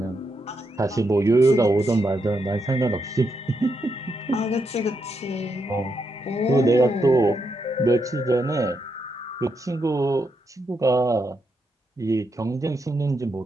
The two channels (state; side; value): normal; both; correlation 0.82